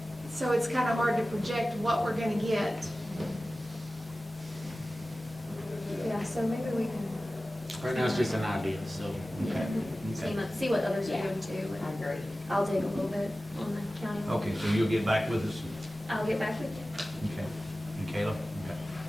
so it's kind of hard to project what we're gonna get. Yeah, so maybe we can Right now, it's just an idea, so. see what others are doing too. I And agree. I'll dig a little bit on the county. Okay, so you'll get back with us? I'll get back with you. Okay. And Caleb? Okay.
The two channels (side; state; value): both; normal; correlation 0.96